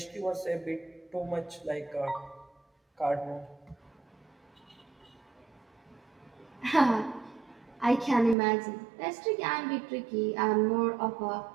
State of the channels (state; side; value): drops out; left; at 8.3 s